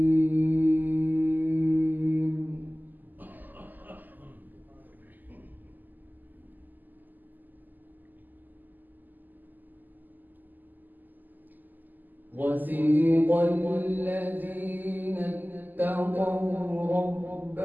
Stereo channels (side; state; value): left; late; 0.086 ms